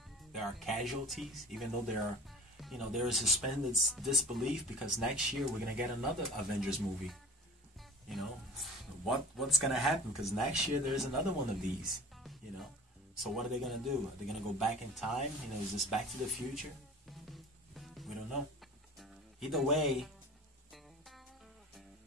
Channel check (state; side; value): normal; both; correlation 0.40